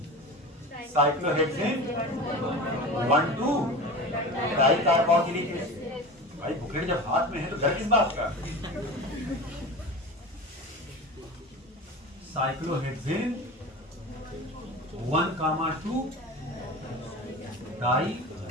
Cyclohexane 1,2 dicarboxylic acid. भाई बुकलेट जब हाथ में है तो डर किस बात का? Cyclohexane 1,2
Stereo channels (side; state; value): both; normal; correlation 0.32